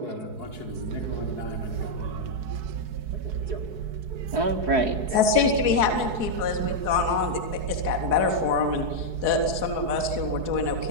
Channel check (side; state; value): left; late; 4.7 ms